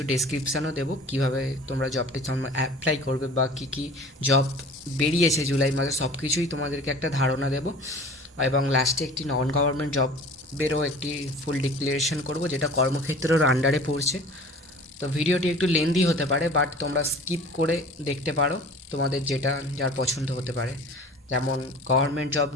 ডেসক্রিপশানও দেবো কীভাবে তোমরা জবটি অ্যাপ্লাই করবে বা কী কী জব বেরিয়েছে জুলাই মাসে, সব কিছুই তোমাদেরকে একটা ধারণা দেবো। এবং লাস্টে একটি নন গভর্নমেন্ট জবেরও একটি ফুল ডিক্লারেশন করব, যেটা কর্মক্ষেত্রের আন্ডারে পড়ছে। তো ভিডিওটি একটু লেন্দি হতে পারে, বাট তোমরা স্কিপ করে দেখতে পারো, তোমাদের যেটা যার পছন্দ হতে পারে। যেমন গভর্নমেন্ট জব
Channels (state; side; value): normal; both; correlation 0.43